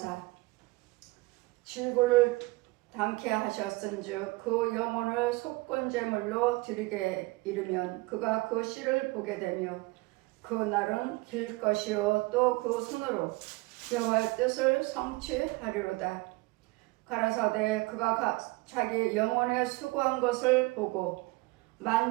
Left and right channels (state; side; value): quieter; left; 23.2 dB